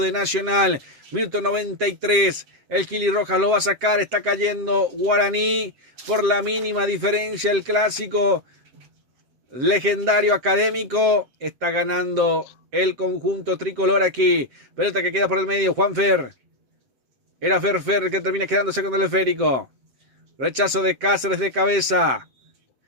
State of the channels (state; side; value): late; left; 7.7 ms